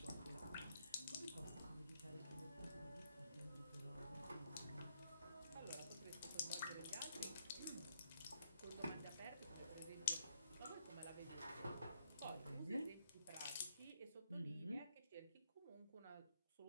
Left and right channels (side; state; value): both; inverted; correlation -0.73